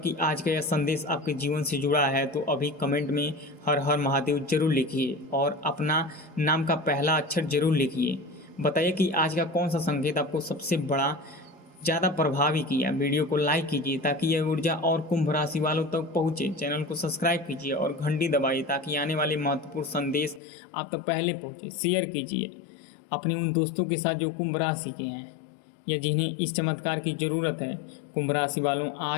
आज का यह संदेश आपके जीवन से जुड़ा है, तो अभी कमेंट में हर हर महादेव जरूर लिखिए और अपना नाम का पहला अक्षर जरूर लिखिए। बताइए कि आज का कौन सा संकेत आपको सबसे बड़ा ज़्यादा प्रभावी किया। वीडियो को लाइक कीजिए ताकि यह ऊर्जा और कुंभ राशि वालों तक पहुँचे। चैनल को सब्सक्राइब कीजिए और घंटी दबाइए ताकि आने वाले महत्वपूर्ण संदेश आप तक पहले पहुँचे। शेयर कीजिए अपने उन दोस्तों के साथ जो कुंभ राशि के हैं या जिन्हें इस चमत्कार की ज़रूरत है। कुंभ राशि वालों,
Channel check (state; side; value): drops out; right; at 20.4 s